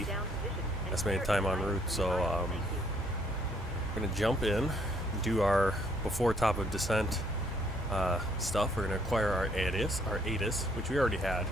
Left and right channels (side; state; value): both; normal; correlation 0.66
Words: the down position and Estimated clear time en flight. route. So Thank you. we're gonna jump in, do our before top of descent stuff. We're gonna acquire our ATIS, which we already had.